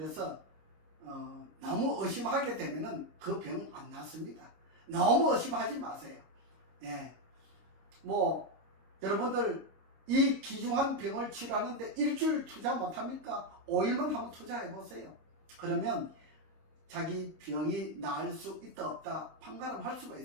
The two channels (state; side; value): late; left; 26 ms